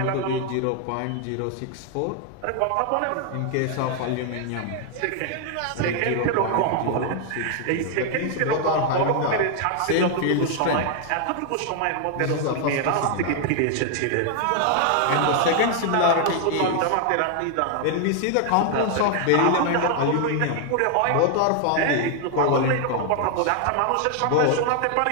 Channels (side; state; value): both; different; correlation 0.00